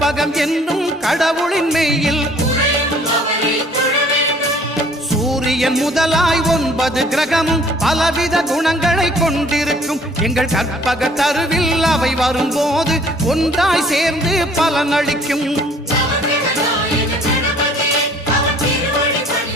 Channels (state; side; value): normal; both; correlation 0.56